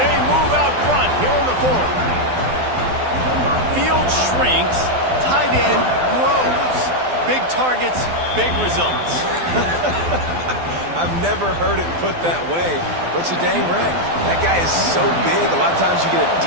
they move out front here in the 4th. Field shrinks. Tight end grows. Big targets, big results. I've never heard it put that way, but you're dang right. That guy is so big. A lot of times you get a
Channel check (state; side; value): late; left; 12 ms